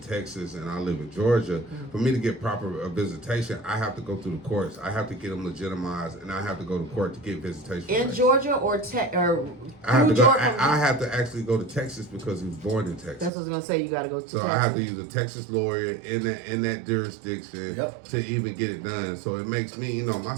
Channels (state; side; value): drops out; left; at 13.3 s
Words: and I live in Georgia, for me to get proper visitation, I have to go through the courts. I have to get them legitimized, and I have to go to court to get visitation. In rights. Georgia or I have to go. Georgia? I have to actually go to Texas because he was born in Texas. That's what I was gonna say. You gotta go to So Texas. I have to use a Texas lawyer in that jurisdiction Yep. to even get it done. So it makes me, my